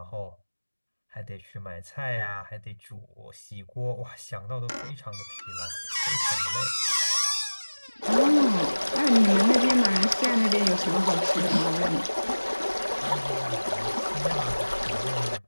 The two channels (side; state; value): both; inverted; correlation -1.00